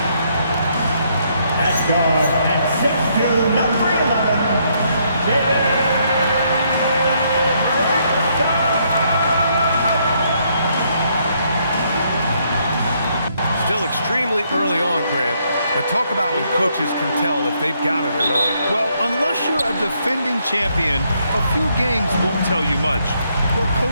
At guard at 6'2", number 11, David Robinson. Still extremely early on, Grant. But talk about when coaches can tell if they've got it or not. Well, unless you're a defending champion, a few games won't tell you much. What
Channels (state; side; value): inverted; both; correlation -0.72